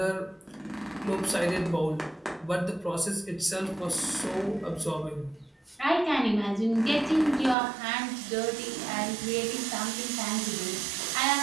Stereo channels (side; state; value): left; drops out; at 7.6 s